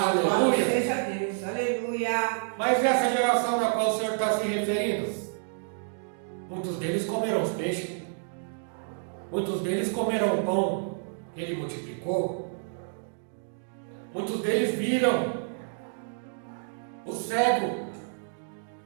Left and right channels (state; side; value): silent; left; digital silence